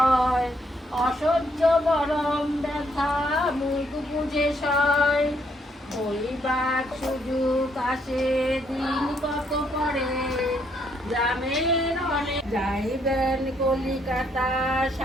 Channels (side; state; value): both; normal; correlation 0.71